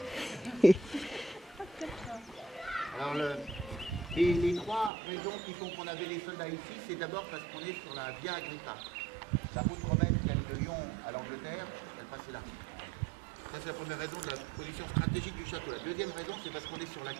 Alors les trois raisons qui font qu'on avait les soldats ici, c'est d'abord parce qu'on est sur la Via Agrippa. La route romaine qui allait de Lyon à l'Angleterre, elle passait là. Ça, c'est la première raison de la position stratégique du château. La deuxième raison, c'est parce qu'on est sur la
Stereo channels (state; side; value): drops out; left; at 4.9 s